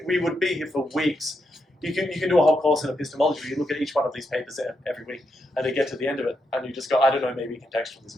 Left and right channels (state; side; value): normal; both; correlation 0.82